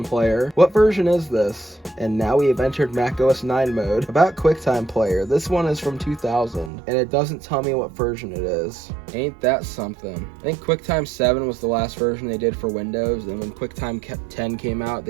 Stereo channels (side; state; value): left; drops out; at 6.7 s